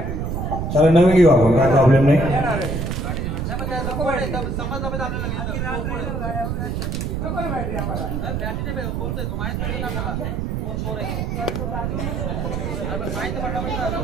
चला नवीन घेऊ आपण, काय प्रॉब्लेम नाही.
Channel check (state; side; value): noise; right; rumble, 2 dB below the sound